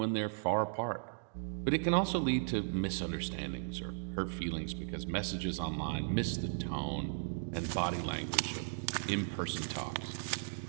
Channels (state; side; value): silent; left; digital silence